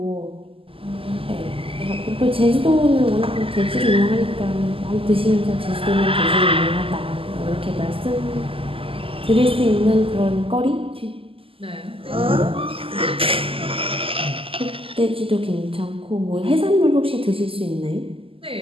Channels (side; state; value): left; late; 0.26 ms